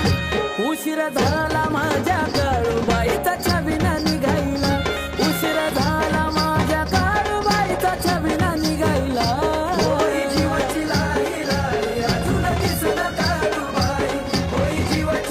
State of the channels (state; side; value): identical; both; correlation 1.00